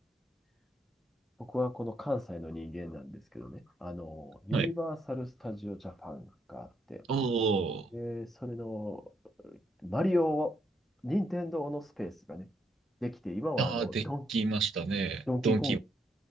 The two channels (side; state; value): both; normal; correlation 0.76